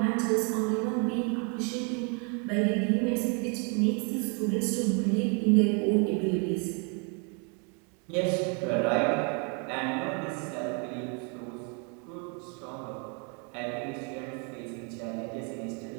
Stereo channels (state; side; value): quieter; left; 36.5 dB